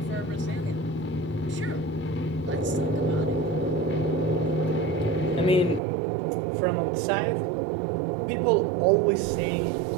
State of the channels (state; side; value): drops out; left; at 5.8 s